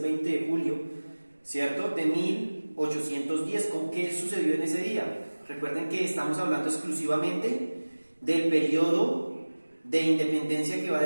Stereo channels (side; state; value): both; inverted; correlation -1.00